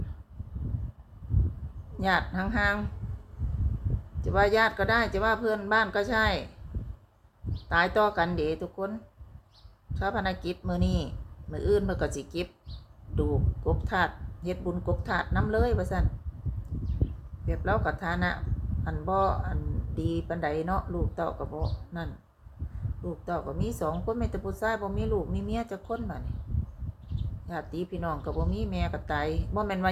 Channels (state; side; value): identical; both; correlation 1.00